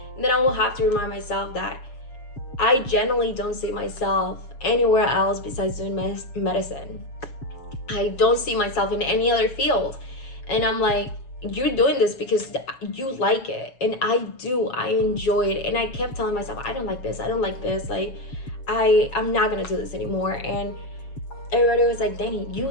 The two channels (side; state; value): right; late; 7.2 ms